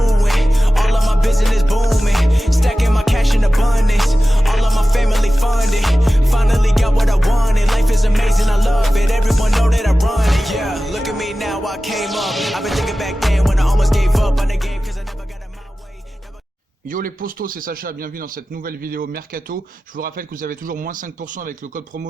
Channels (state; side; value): normal; both; correlation 0.95